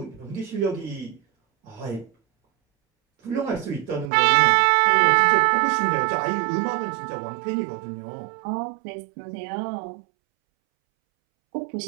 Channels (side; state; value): left; drops out; at 4.1 s